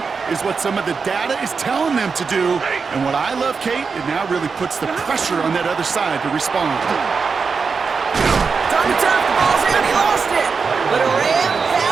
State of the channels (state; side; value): quieter; left; 5.2 dB